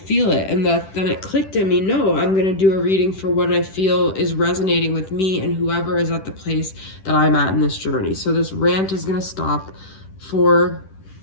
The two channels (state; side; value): late; right; 10 ms